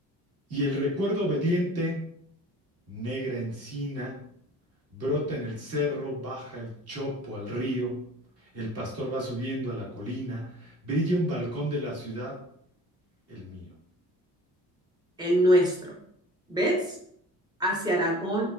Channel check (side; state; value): both; normal; correlation 0.46